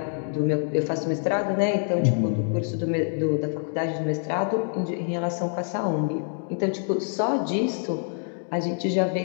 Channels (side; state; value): right; silent; 61 dB below the other